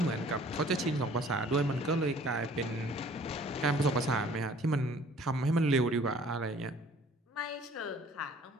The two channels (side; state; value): both; normal; correlation 0.54